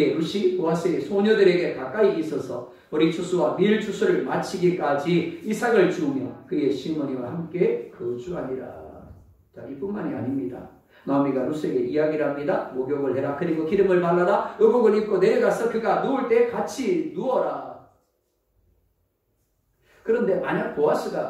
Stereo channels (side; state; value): both; identical; correlation 1.00